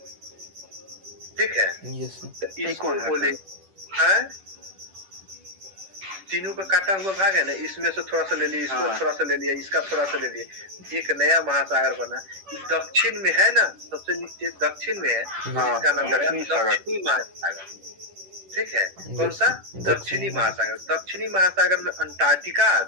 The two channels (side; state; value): left; late; 10 ms